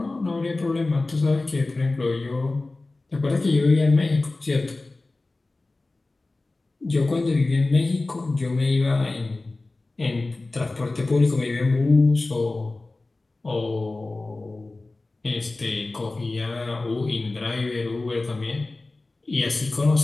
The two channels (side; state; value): right; quieter; 3.2 dB